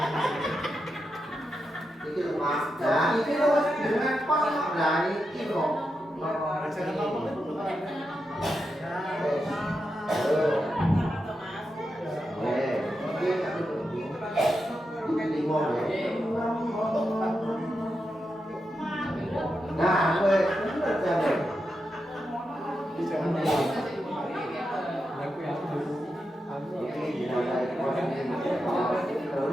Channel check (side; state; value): both; normal; correlation 0.87